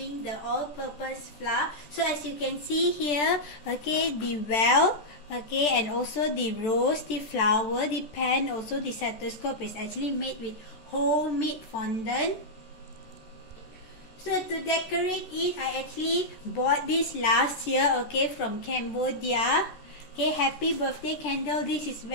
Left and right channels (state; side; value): late; right; 14 ms